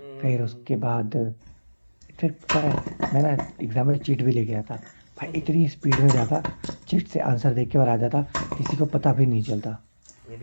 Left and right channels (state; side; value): inverted; both; correlation -1.00